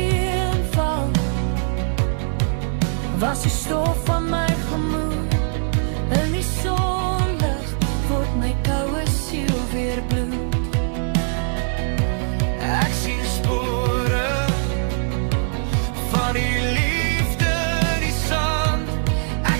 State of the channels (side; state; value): left; silent; digital silence